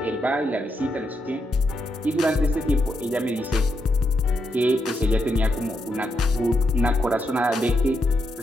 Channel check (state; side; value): normal; both; correlation 0.82